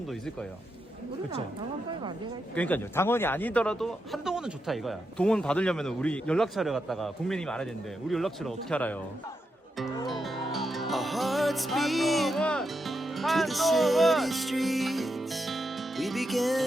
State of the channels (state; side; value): normal; both; correlation 0.85